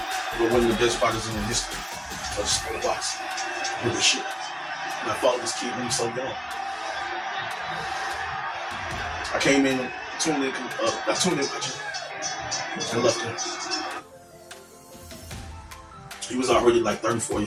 But one of the best fighters in the history of the sport of boxing. Really shit. And I followed this kid when he was so young. I came in, tuned in watching, and left him. He was already like 34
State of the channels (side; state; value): both; identical; correlation 1.00